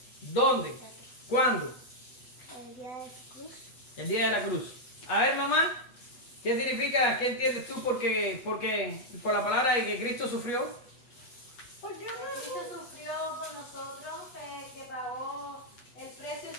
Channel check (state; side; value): late; right; 8.3 ms